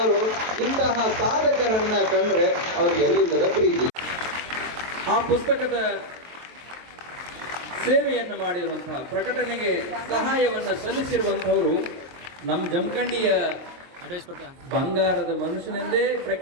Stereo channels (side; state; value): left; late; 23 ms